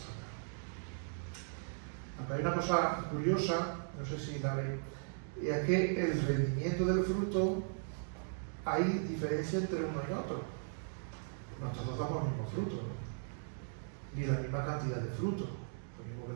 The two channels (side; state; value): left; silent; digital silence